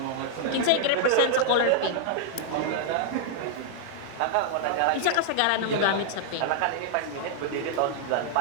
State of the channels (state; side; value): different; both; correlation -0.01